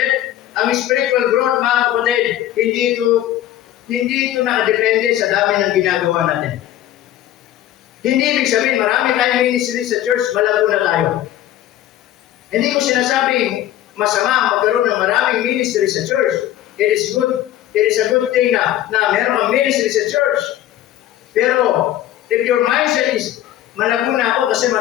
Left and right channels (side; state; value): right; quieter; 12.8 dB